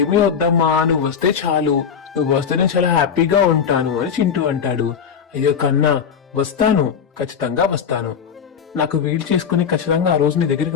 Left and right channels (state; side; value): quieter; right; 7.1 dB